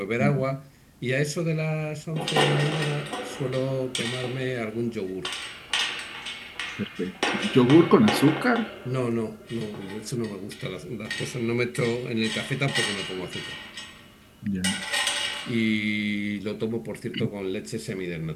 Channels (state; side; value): identical; both; correlation 1.00